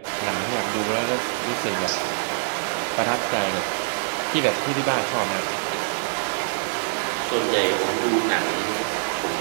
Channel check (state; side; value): silent; left; digital silence